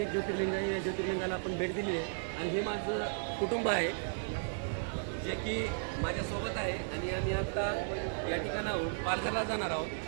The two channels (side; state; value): left; silent; digital silence